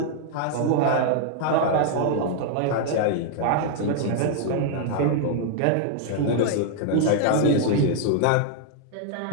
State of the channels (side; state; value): both; different; correlation -0.01